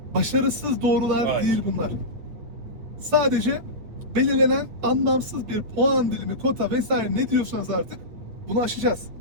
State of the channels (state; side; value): late; left; 8.9 ms